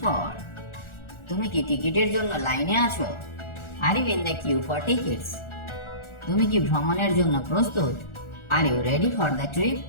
for? তুমি কি টিকিটের জন্য লাইনে আছো? Are you in the queue for tickets? তুমি কি ভ্রমণের জন্য প্রস্তুত? Are you ready for the trip?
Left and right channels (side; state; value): right; late; 1.4 ms